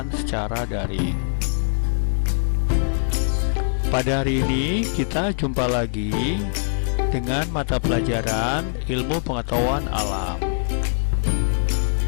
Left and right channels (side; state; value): right; silent; 64 dB below the other